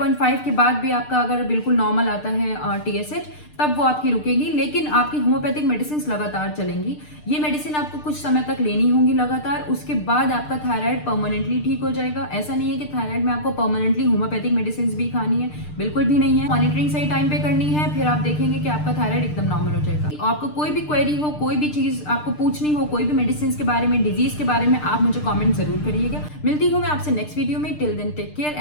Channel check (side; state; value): right; late; 6.6 ms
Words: के बाद भी आपका अगर बिल्कुल नॉर्मल आता है TSH तब वो आपकी रुकेगी, लेकिन आपकी होम्योपैथिक मेडिसिन लगातार चलेंगी। ये मेडिसिन आपको कुछ समय तक लेनी होंगी लगातार, उसके बाद आपका थायराइड परमानेंटली ठीक हो जाएगा। ऐसा नहीं है कि थायराइड में आपको परमानेंटली होम्योपैथिक मेडिसिन भी खानी है, बिल्कुल भी नहीं है। मॉनिटरिंग सही टाइम पे करनी है, फिर आप देखेंगे कि आपका थायराइड एकदम नॉर्मल हो जाएगा। आपको कोई भी क्वेरी हो, कोई भी चीज आपको पूछनी हो, कोई भी मेडिसिन के बारे में, डिजीज के बारे में, आप मुझे कॉमेंट जरूर करिएगा। मिलती हूँ मैं आपसे नेक्स्ट वीडियो में। Till then take care